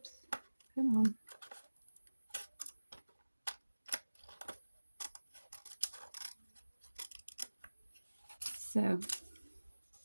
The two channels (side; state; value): both; inverted; correlation -1.00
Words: come on. So